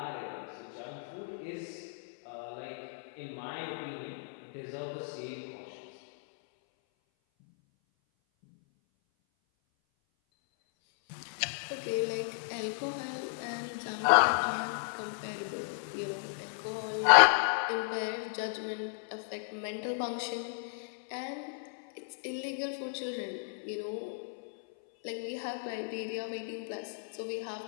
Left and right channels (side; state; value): right; silent; 55 dB below the other